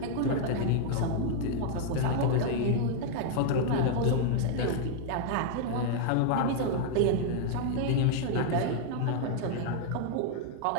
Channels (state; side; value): different; both; correlation -0.01